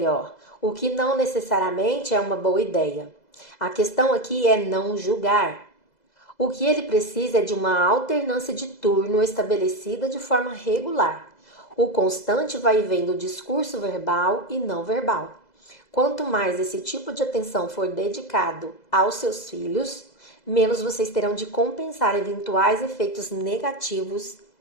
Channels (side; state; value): right; late; 2.0 ms